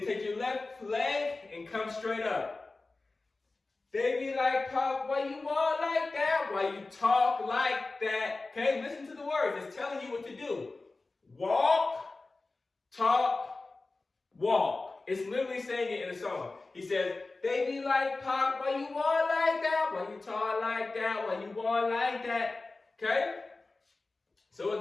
take your left leg and come straight up. They be like pop while you walk like that, while you talk like that. Okay, listen to the words. It's telling you what to do. Walk, talk, walk. It's literally saying it in the song. He says, they be like pop while you walk like that, while you talk like that, while you walk like that. Okay? So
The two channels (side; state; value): right; quieter; 3.4 dB